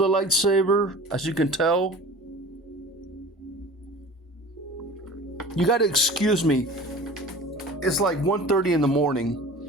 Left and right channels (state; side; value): normal; both; correlation 0.40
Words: lightsaber, as you can tell. You gotta excuse me. it's like 1:30 in the morning.